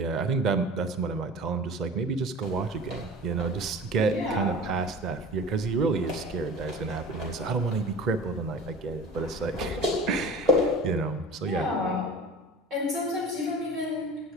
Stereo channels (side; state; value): both; normal; correlation 0.38